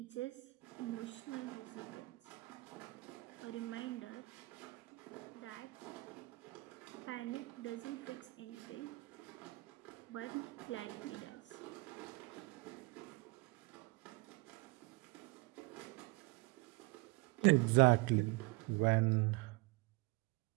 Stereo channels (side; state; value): left; quieter; 24.6 dB